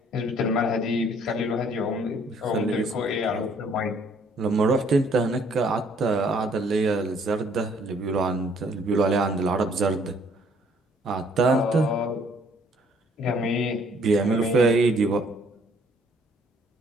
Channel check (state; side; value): normal; both; correlation 0.62